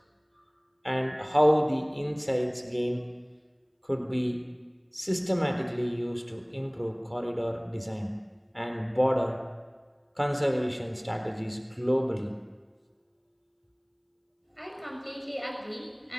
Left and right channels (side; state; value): both; identical; correlation 1.00